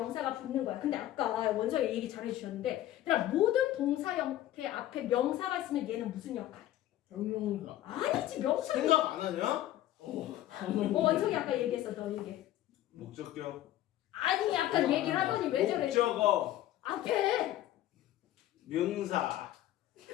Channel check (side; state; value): right; quieter; 13.6 dB